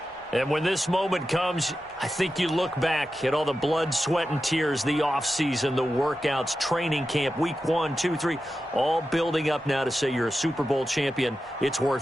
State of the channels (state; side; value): normal; both; correlation 0.91